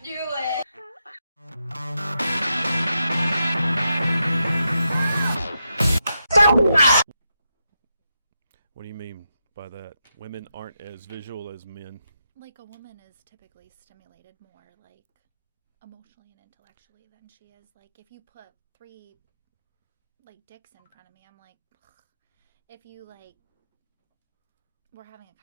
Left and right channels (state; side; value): inverted; both; correlation -0.86